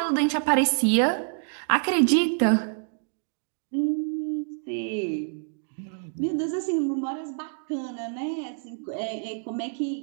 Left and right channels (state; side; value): silent; left; digital silence